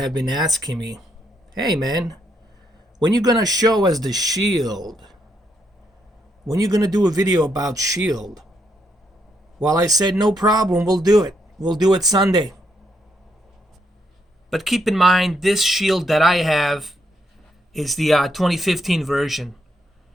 been asking me, hey man, when you gonna show us the Shield? When you gonna do a video about Shield? Well, I said no problem, we'll do it. We'll do it Sunday. But keep in mind, this Shield that I have is the 2015 version,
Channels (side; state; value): both; normal; correlation 0.77